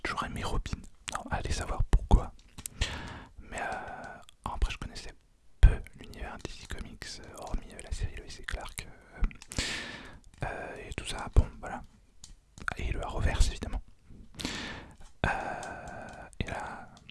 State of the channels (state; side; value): identical; both; correlation 1.00